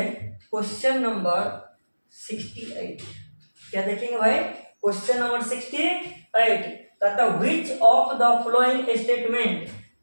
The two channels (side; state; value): both; inverted; correlation -1.00